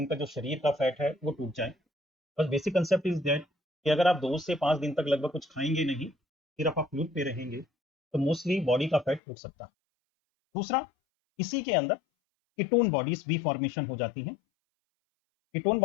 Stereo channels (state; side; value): drops out; right; at 9.2 s